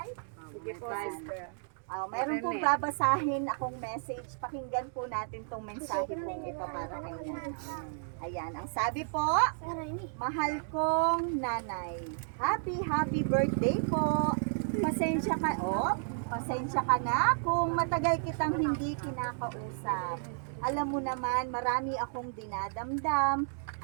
Sige po, sister. Meron pong babasahin akong message. Pakinggan po natin tong mensahe pong ito para kay nanay. Ayan, ang sabi po, mahal kong nanay, happy birthday po. Pasensya ka na kung matagal kitang hindi kinakausap. Alam mo naman, marami akong dinadamdam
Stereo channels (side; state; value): left; silent; digital silence